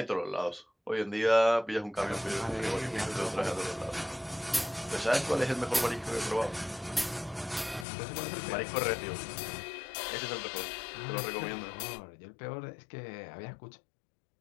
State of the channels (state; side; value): drops out; right; at 7.9 s